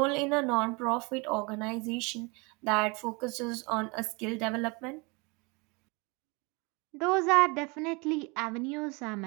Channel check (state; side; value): quieter; left; 28.7 dB